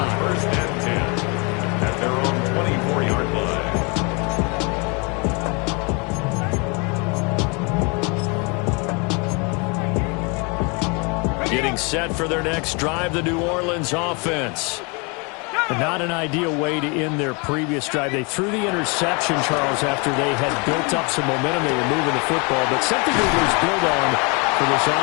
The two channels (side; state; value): right; quieter; 31.2 dB